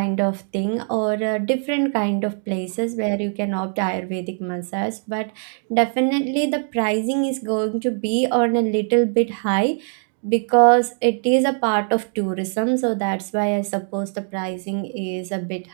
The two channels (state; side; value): silent; left; 56 dB below the other